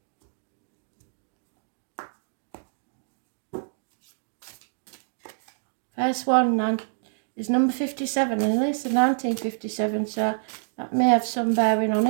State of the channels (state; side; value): silent; left; digital silence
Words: First one is number 57, and it's 1957, so that may have some bearing on